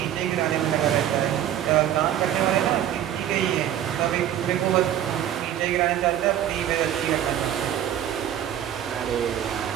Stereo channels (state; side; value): quieter; left; 11.0 dB